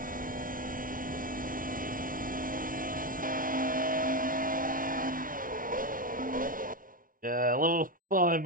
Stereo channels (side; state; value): left; late; 0.40 ms